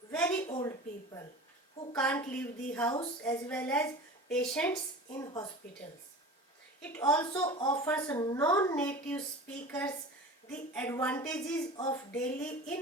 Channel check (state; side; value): normal; both; correlation 0.36